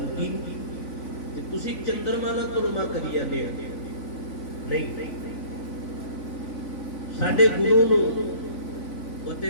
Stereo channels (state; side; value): late; right; 3.5 ms